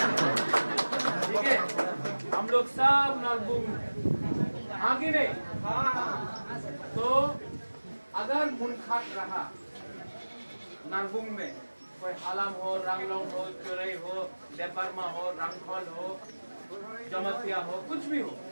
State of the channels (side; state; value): both; inverted; correlation -1.00